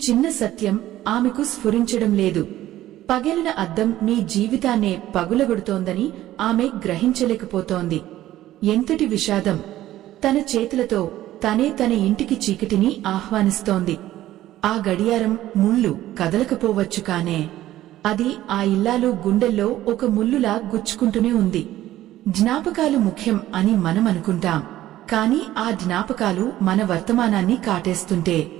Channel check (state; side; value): quieter; left; 14.2 dB